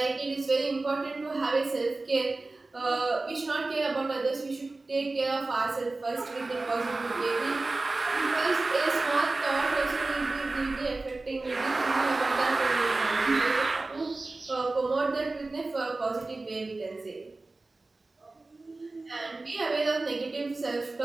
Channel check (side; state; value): left; quieter; 3.3 dB